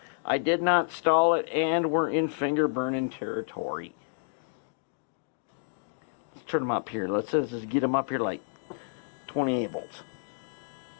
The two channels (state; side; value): silent; right; digital silence